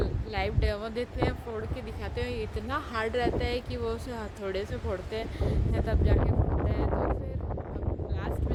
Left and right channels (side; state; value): both; identical; correlation 1.00